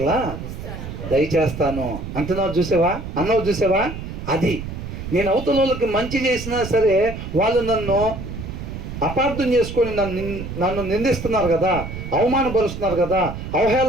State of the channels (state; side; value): noise; right; rumble, 8 dB below the sound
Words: దయచేస్తాను అంటున్నావు చూసావా, అన్నావు చూసావా? అది నేను అవతల వాళ్ళకి మంచి చేసినా సరే వాళ్ళు నన్ను అపార్థం చేసుకొని నన్ను నిందిస్తున్నారు కదా, అవమానపరుస్తున్నారు కదా,